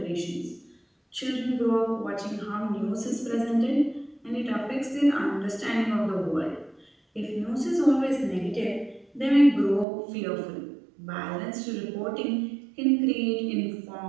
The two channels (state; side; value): drops out; left; at 9.9 s